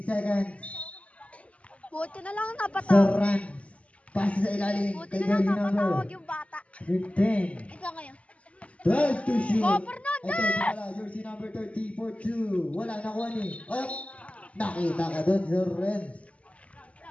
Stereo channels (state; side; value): late; right; 0.065 ms